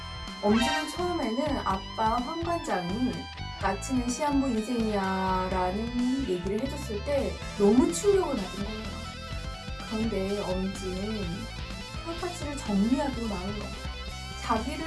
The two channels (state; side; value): identical; both; correlation 1.00